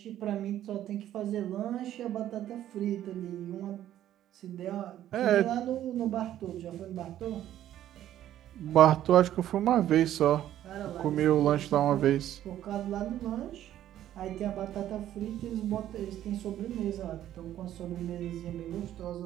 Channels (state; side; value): quieter; left; 12.1 dB